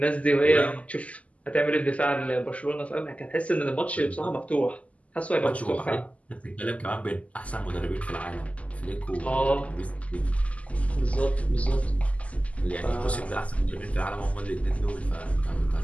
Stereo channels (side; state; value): right; late; 0.068 ms